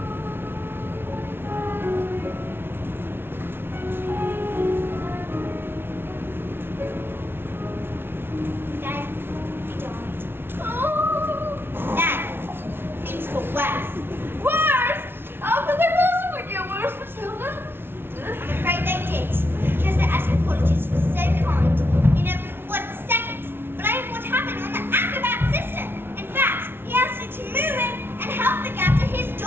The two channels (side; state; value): left; late; 0.11 ms